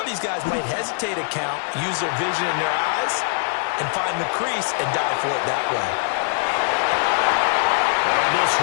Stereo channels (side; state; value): right; silent; digital silence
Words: these guys might hesitate to count, use their vision in their eyes, and find the crease and dive for it that way. And this